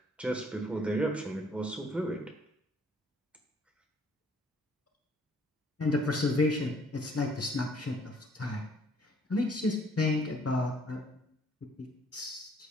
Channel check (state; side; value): normal; both; correlation 0.62